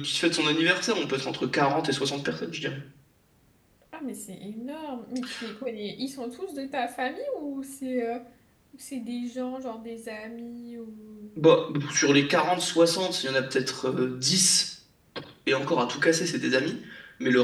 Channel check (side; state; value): both; identical; correlation 1.00